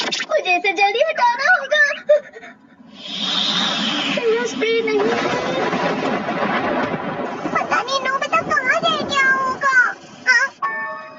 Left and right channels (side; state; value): both; identical; correlation 1.00